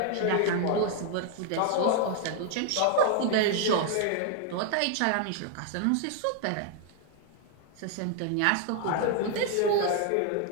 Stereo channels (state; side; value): different; both; correlation 0.00